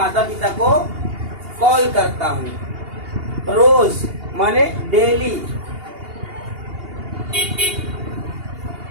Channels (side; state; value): left; late; 2.8 ms